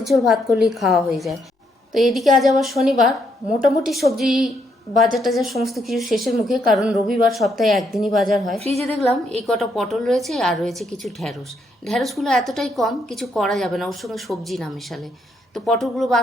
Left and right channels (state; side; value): normal; both; correlation 0.75